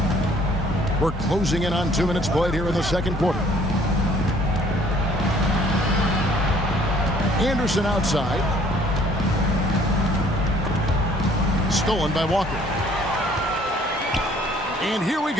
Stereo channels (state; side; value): normal; both; correlation 0.58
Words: We're closing in on 2 minutes played here in the second quarter. Anderson outside. Stolen by Walker. And here we